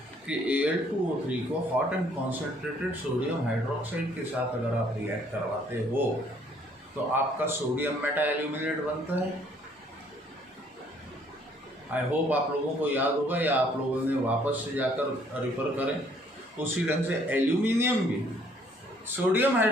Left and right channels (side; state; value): both; normal; correlation 0.63